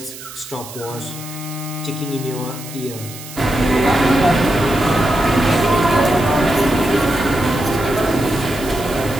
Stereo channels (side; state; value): right; noise; hiss, 14 dB below the sound